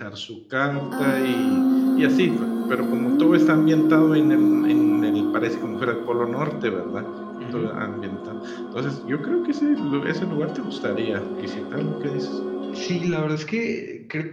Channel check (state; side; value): identical; both; correlation 1.00